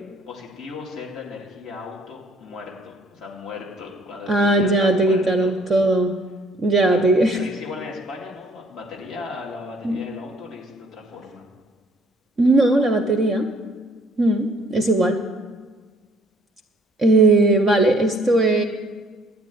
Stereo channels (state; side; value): normal; both; correlation 0.60